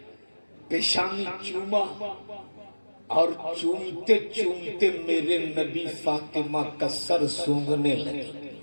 پیشانی چوما، اور چومتے چومتے میرے نبی فاطمہ کا سر سونگھنے لگے۔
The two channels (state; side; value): inverted; both; correlation -1.00